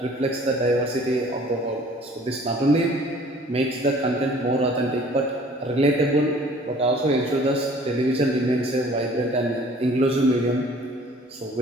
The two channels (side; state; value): both; normal; correlation 0.52